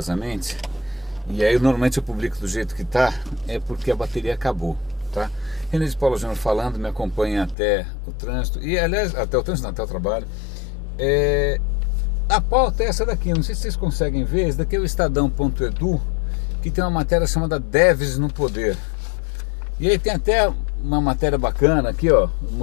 e aí normalmente eu publico do jeito que tá, é porque a bateria acabou, tá? René de Paula Júnior falando, me acompanha até o trânsito, e aliás, até o trânsito não, até o trabalho. A pauta é essa daqui, não sei se vocês conseguem ver, esse daqui é o Estadão.edu, que tem uma matéria chamada Devs no Poder. E aí tem até uma matéria bacana aqui, ó,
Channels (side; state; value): right; drops out; at 7.6 s